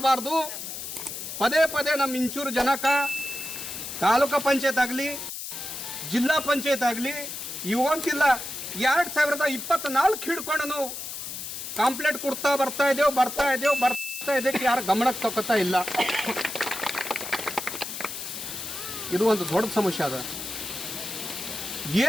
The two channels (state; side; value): noise; left; hiss, 7 dB below the sound